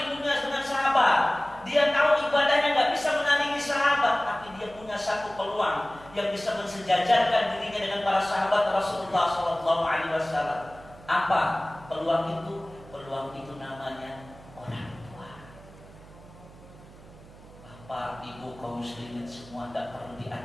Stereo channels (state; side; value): noise; right; hum, 20 dB below the sound